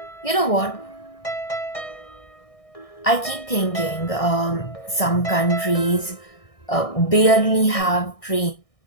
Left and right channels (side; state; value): right; late; 1.6 ms